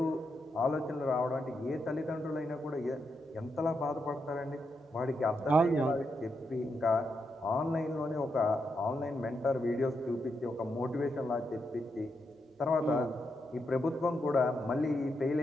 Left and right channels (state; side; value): normal; both; correlation 0.83